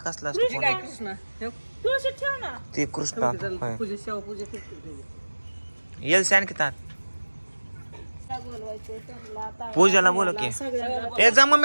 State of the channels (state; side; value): inverted; both; correlation -1.00